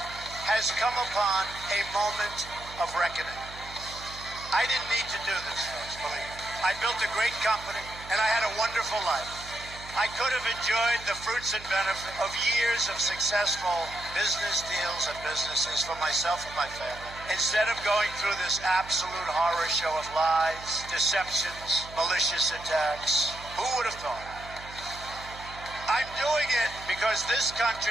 has come upon a moment of reckoning. I didn't need to do this, folks, believe me. I built a great company, and I had a wonderful life. I could have enjoyed the fruits and benefit of years of successful business deals and businesses for myself and my family. Instead of going through this absolute horror show of lies, deceptions, malicious attacks, who would have thought? I'm doing it because this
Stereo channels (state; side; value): noise; right; hum, 16 dB below the sound